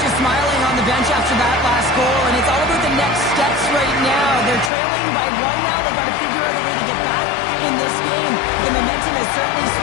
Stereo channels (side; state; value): right; drops out; at 4.7 s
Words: is smiling on the bench after that last goal, and it's all about the next steps right now. They're trailing by 1 now. They've got to figure out a way to get back in this game. The momentum has certainly